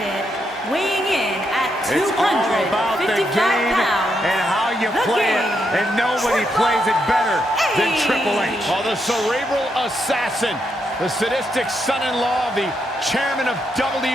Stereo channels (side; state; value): both; normal; correlation 0.80